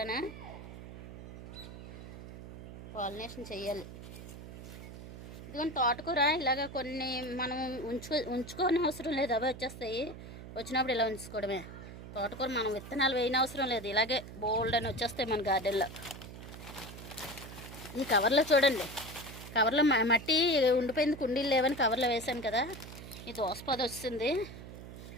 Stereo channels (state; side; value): noise; right; hum, 13 dB below the sound